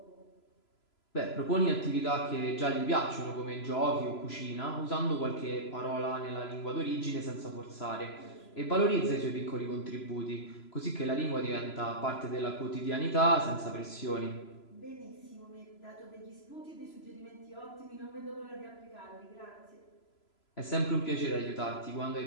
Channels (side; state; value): right; late; 3.0 ms